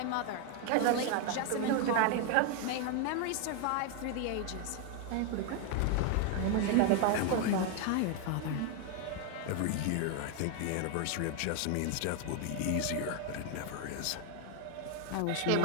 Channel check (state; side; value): different; both; correlation 0.01